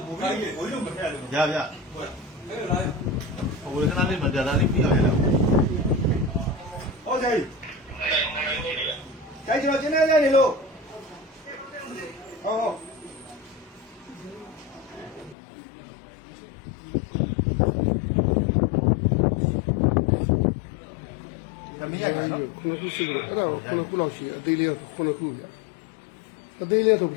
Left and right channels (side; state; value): right; drops out; at 15.4 s